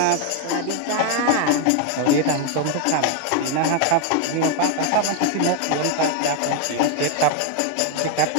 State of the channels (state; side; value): different; both; correlation 0.01